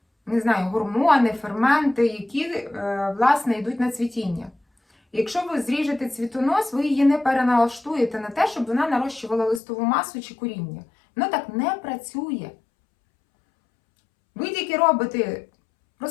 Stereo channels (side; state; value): right; drops out; at 9.6 s